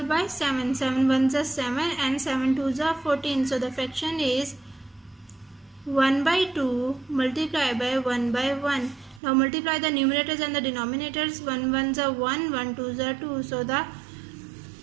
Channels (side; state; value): left; drops out; at 9.2 s